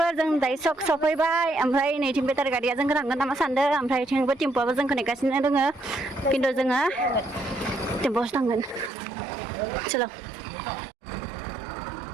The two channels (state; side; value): drops out; left; at 8.9 s